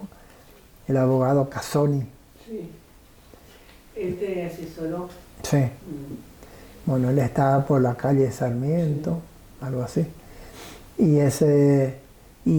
el abogado Casoni. Sí. Él te asesoró. Sí. Bueno, él estaba por la calle Sarmiento, algo así.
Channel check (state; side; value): identical; both; correlation 1.00